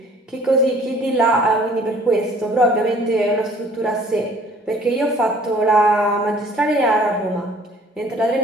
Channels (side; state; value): both; normal; correlation 0.54